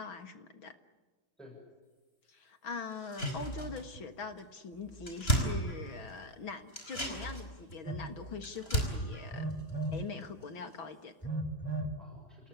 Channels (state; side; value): late; right; 2.9 ms